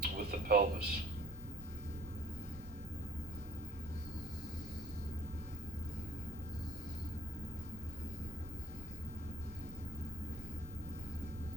with the pelvis.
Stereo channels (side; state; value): both; normal; correlation 0.51